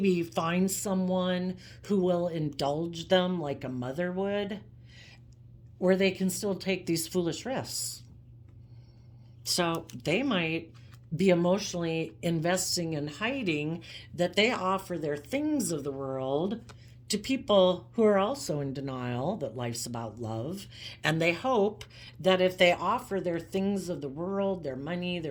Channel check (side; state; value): both; identical; correlation 1.00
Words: find someone who will indulge them like a mother would, where they can still take these foolish risks. So they might be emotionally investing and hiding that they offer their things of the world to people who are also in denial that life's about love. And they hope that if they offer their things of the world, their money, their